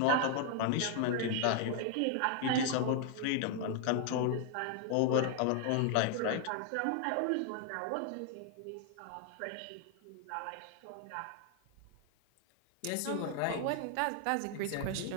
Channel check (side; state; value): both; different; correlation 0.00